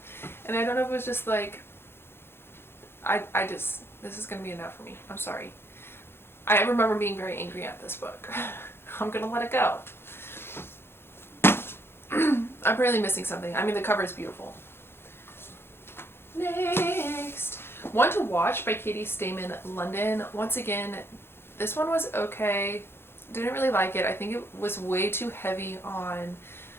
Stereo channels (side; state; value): right; late; 0.11 ms